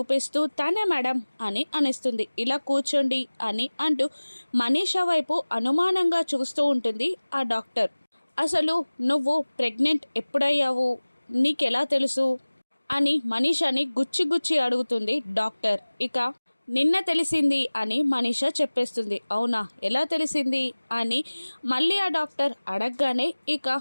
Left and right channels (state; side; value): inverted; both; correlation -1.00